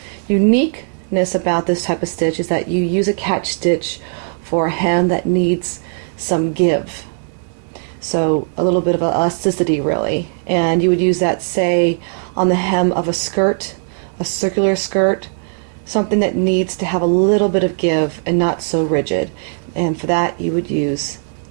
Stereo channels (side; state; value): left; silent; digital silence